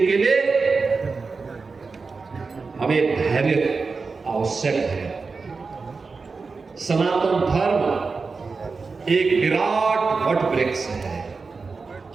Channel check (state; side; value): quieter; left; 4.5 dB